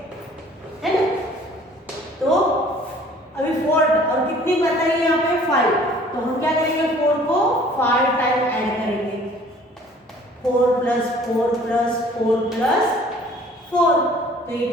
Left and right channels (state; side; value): normal; both; correlation 0.53